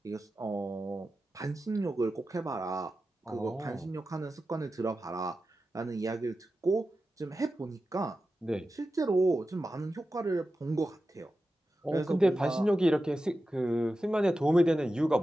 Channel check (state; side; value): normal; both; correlation 0.92